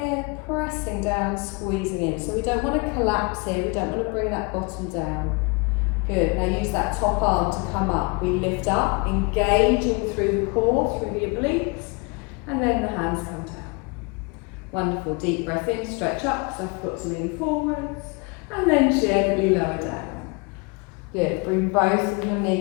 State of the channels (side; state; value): right; quieter; 29.9 dB